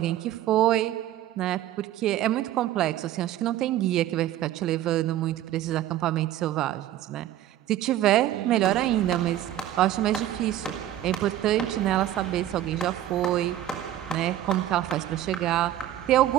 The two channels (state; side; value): quieter; left; 12.8 dB